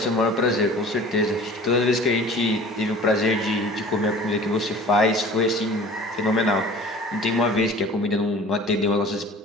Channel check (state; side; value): normal; both; correlation 0.44